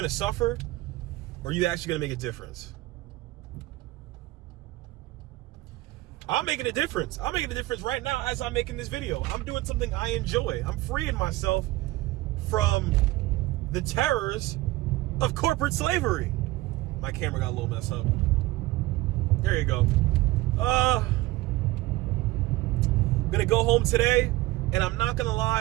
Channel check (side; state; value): left; quieter; 18.8 dB